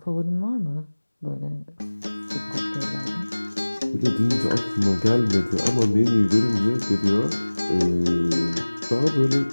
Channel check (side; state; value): both; inverted; correlation -1.00